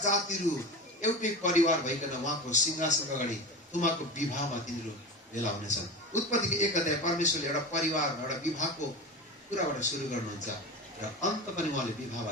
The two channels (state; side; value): normal; both; correlation 0.27